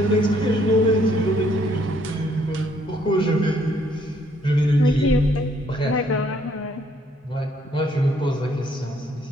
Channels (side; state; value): both; normal; correlation 0.67